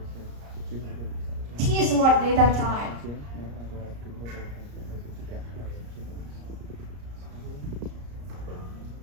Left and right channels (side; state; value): left; late; 34 ms